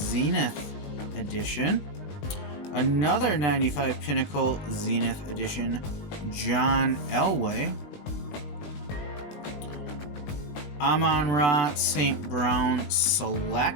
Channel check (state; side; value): late; right; 20 ms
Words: Edition. Another 95 Pinnacle Zenith Edition, John Elway. Amon-Ra St. Brown